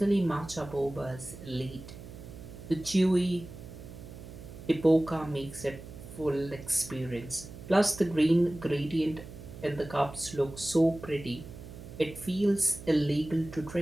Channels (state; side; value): noise; right; hum, 14 dB below the sound